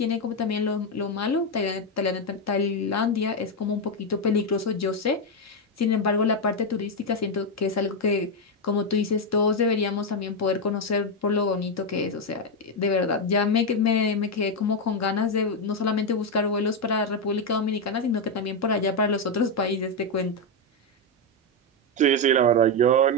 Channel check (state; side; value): normal; both; correlation 0.05